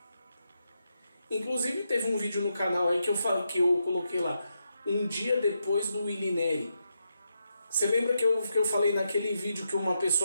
Inclusive teve um vídeo no canal aí que eu coloquei lá, um dia depois do Willy Neri. Você lembra que eu falei naquele vídeo que uma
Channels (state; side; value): inverted; both; correlation -0.84